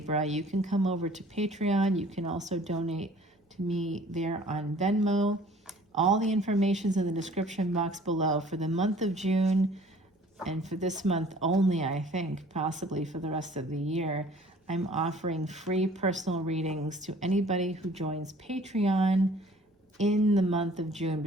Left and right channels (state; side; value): normal; both; correlation 0.52